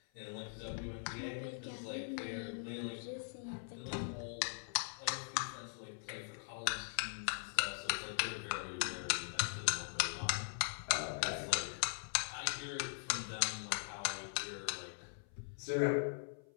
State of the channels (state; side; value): silent; right; 50 dB below the other